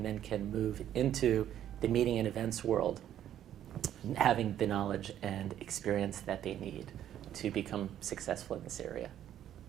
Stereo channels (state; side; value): quieter; left; 11.0 dB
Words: then can move into the meeting and events world having the knowledge and experience that they need to become successful in this area.